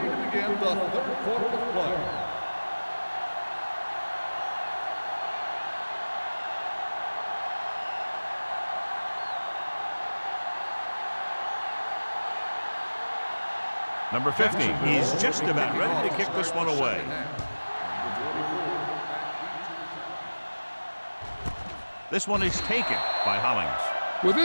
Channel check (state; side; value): inverted; both; correlation -1.00